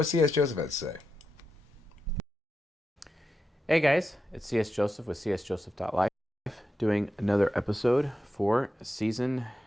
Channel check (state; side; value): normal; both; correlation 0.88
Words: C.S. Joseph has to say. Hey guys, it's C.S. Joseph with csjoseph.life doing another episode for season